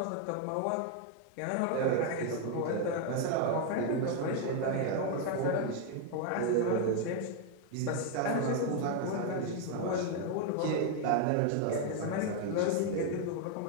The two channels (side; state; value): both; different; correlation 0.01